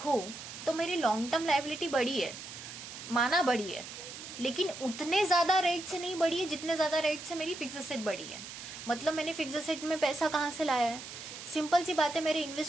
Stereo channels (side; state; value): right; noise; hiss, 11 dB below the sound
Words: तो मेरी लॉन्ग टर्म लाइबिलिटी बढ़ी है, माना बढ़ी है, लेकिन उतने ज्यादा रेट से नहीं बढ़ी है जितने ज्यादा रेट से मेरी फिक्स असेट बढ़ी है. मतलब मैंने फिक्स असेट में पैसा कहाँ से लाया है? सिंपल सी बात है, मेरे